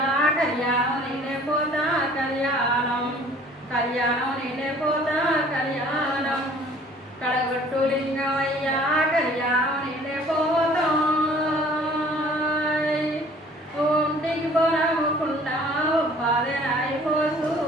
కళ్యాణం నేనే పోతా కళ్యాణం నేనే పోతా కళ్యాణం కడగొట్టు లింగమయ్య కళ్యాణం నేనే పోతా ఒంటికి బొనముకుండా ఒప్పాది నాయి పోసు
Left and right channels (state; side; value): normal; both; correlation 0.52